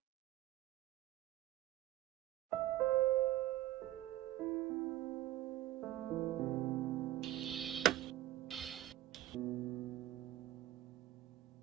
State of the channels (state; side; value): quieter; left; 14.4 dB